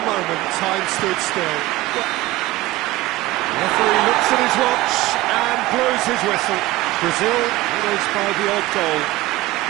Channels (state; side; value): quieter; left; 18.1 dB